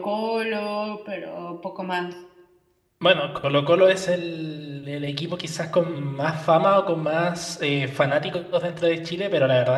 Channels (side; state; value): both; identical; correlation 1.00